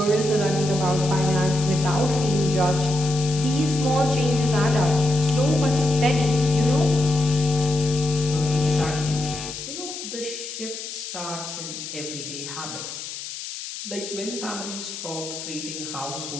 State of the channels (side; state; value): left; noise; hiss, 9 dB below the sound